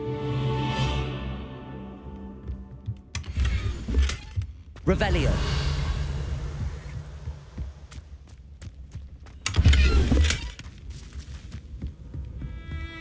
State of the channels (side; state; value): both; identical; correlation 1.00